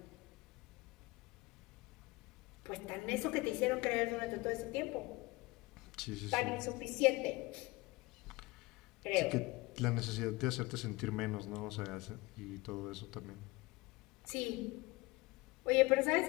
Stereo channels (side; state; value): right; quieter; 22.8 dB